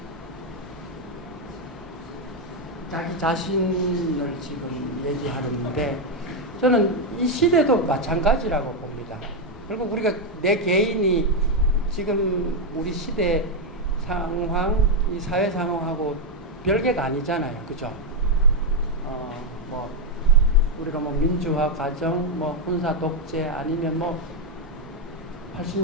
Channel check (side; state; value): both; normal; correlation 0.03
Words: 자기 자신을 지금 얘기하는데, 저는 이 시대도 마찬가지라고 봅니다. 결국 우리가 내 개인이 지금 우리 시대 상황, 이 사회 상황하고 별개가 아니잖아요. 그죠? 뭐, 우리가 뭐 민주화 과정, 뭐 군사 독재, 아니면 뭐